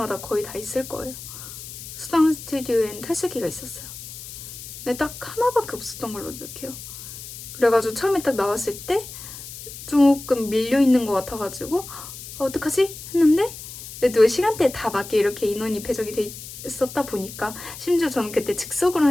거의 다 있을 거예요. 수당 스튜디오엔 탈수기가 있었어요. 근데 딱 하나밖에 없었던 걸로 기억해요. 그래가지고 처음에 딱 나왔을 때 조금 밀려있는 것 같아가지고 어떡하지? 했는데 그래도 시간대에 다 맞게 이렇게 인원이 배정이 돼 있었다 보니까, 심지어 저는 그때 즉석으로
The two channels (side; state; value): left; noise; hiss, 12 dB below the sound